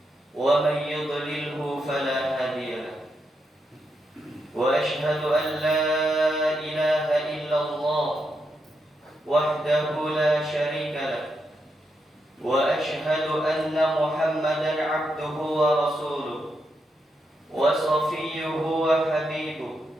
wa man yudlilhu fala hadiya lahu wa ashhadu an la ilaha illallah wahdahu la syarika lahu wa ashhadu anna Muhammadan 'abduhu wa rasuluhu wa safiyyuhu wa habibuhu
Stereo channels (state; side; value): normal; both; correlation 0.83